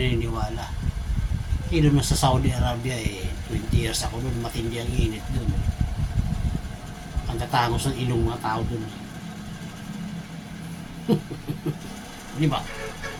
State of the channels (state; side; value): identical; both; correlation 1.00